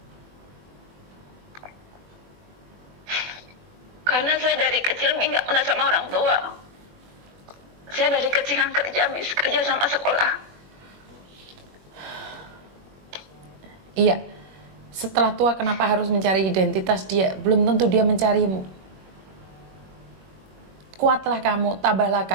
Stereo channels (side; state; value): left; late; 21 ms